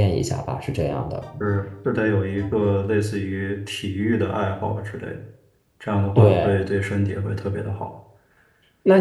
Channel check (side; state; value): both; identical; correlation 1.00